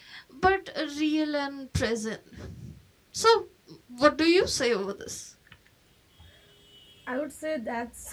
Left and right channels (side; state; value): both; identical; correlation 1.00